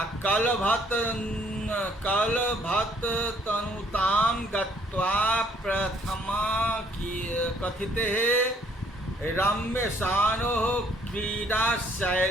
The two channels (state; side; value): normal; both; correlation 0.63